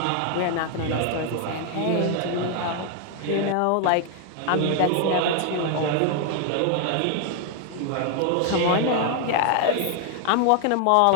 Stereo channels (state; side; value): different; both; correlation 0.00